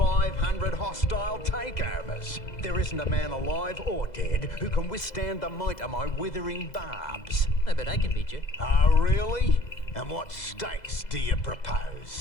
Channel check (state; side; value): late; right; 2.0 ms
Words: hostile takeovers. There isn't a man alive or dead who can withstand the might of my withering barbs. I bet I can beat you. Oh, really? And what stakes do you